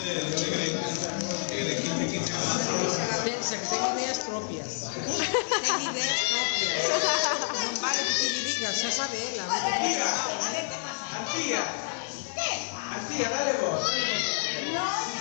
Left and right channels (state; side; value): silent; right; 59 dB below the other